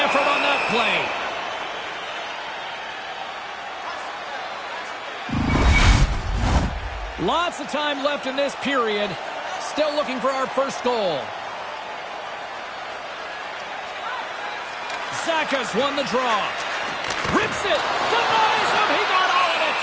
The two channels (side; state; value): both; identical; correlation 1.00